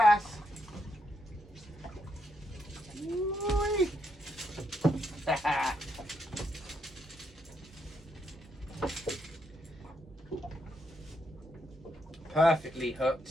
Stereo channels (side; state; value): both; normal; correlation 0.78